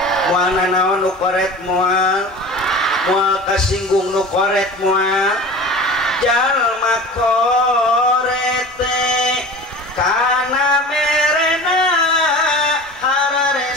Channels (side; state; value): both; normal; correlation 0.37